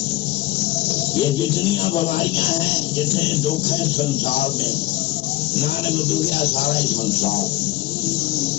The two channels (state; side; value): quieter; right; 17.5 dB